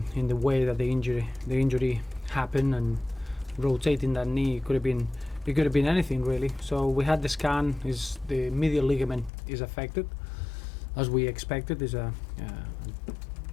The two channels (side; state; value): right; drops out; at 9.3 s